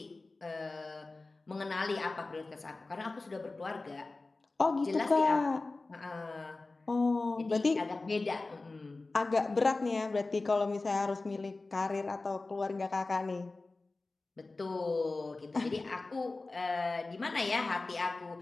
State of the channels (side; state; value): right; quieter; 3.4 dB